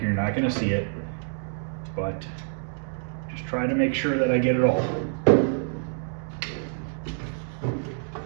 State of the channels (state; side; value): silent; left; 60 dB below the other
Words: you're not going to see it, but just try to make sure that I get it all. Oh,